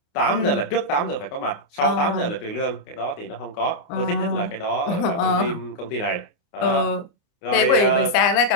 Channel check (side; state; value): right; late; 29 ms